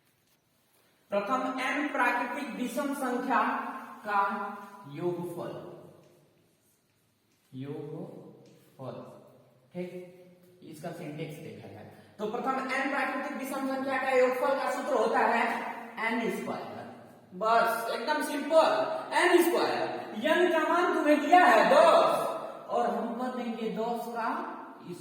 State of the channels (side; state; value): both; identical; correlation 1.00